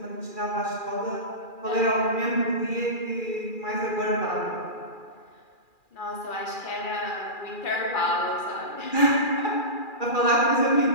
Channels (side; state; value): right; late; 2.4 ms